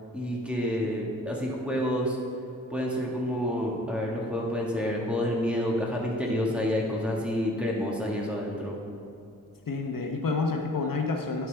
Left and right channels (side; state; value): both; normal; correlation 0.52